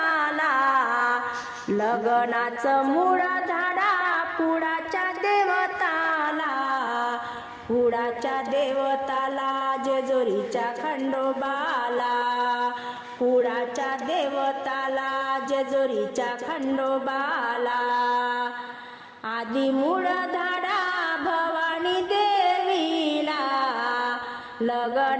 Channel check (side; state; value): both; identical; correlation 1.00